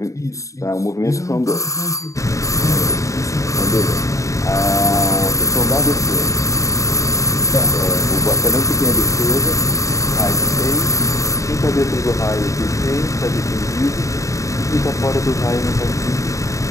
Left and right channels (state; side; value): late; right; 0.16 ms